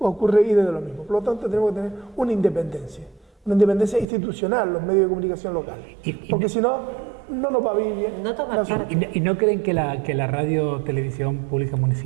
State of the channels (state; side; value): drops out; left; at 4.0 s